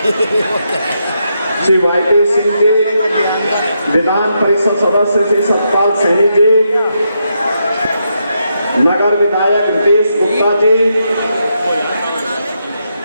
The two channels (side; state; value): both; inverted; correlation -0.81